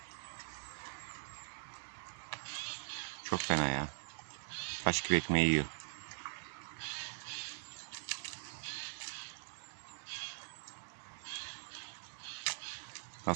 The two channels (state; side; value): silent; left; digital silence